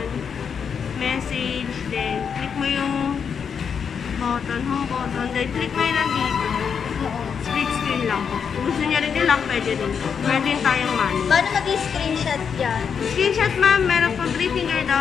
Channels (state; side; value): quieter; right; 6.8 dB